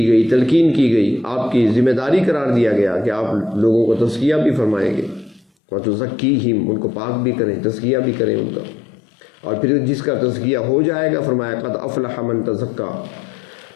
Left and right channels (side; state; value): right; drops out; at 5.5 s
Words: گئی، تلقین کی گئی، آپ کی ذمہ داری قرار دیا گیا کہ آپ لوگوں کو تزکیہ بھی فرمائیں گے، وَتُزَكِّيهِمْ، ان کو پاک بھی کریں، تزکیہ بھی کریں ان کا. اور پھر جس کا تزکیہ ہو جائے گا فرمایا قد افلح من تزکا،